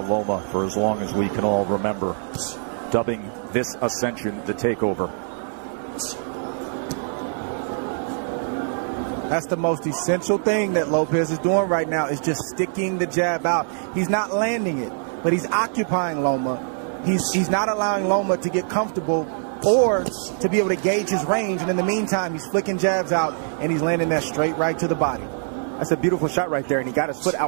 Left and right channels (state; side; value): silent; left; 63 dB below the other